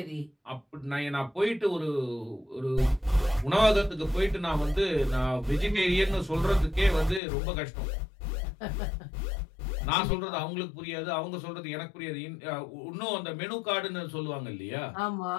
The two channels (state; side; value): drops out; right; at 7.2 s